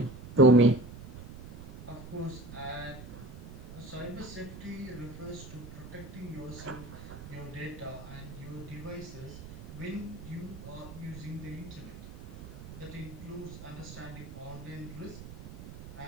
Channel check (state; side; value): noise; right; rumble, 13 dB below the sound